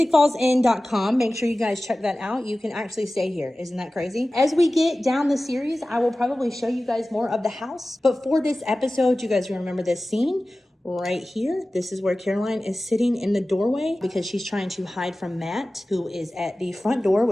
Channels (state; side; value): normal; both; correlation 0.96